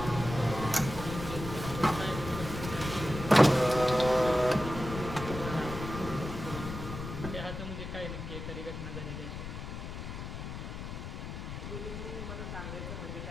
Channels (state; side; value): noise; left; rumble, 7 dB below the sound